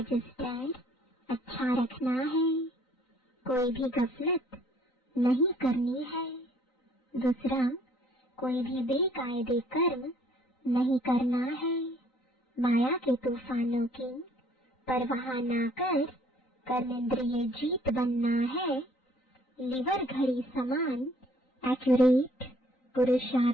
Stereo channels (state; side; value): late; right; 3.9 ms